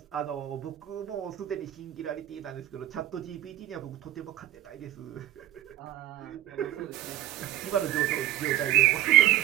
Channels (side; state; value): left; quieter; 13.4 dB